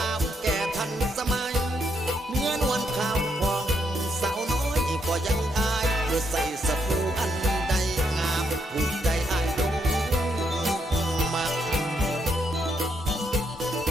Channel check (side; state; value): both; normal; correlation 0.76